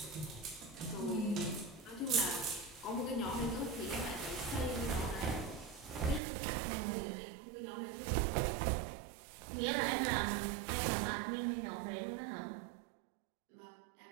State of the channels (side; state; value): left; drops out; at 6.2 s